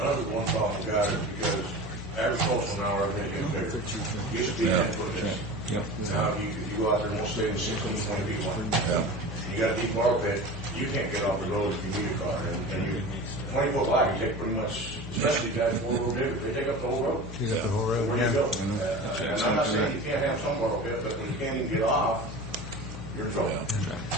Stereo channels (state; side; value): normal; both; correlation 0.33